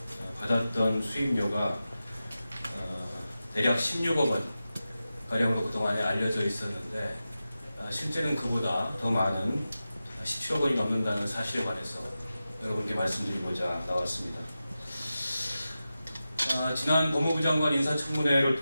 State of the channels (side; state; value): both; inverted; correlation -0.93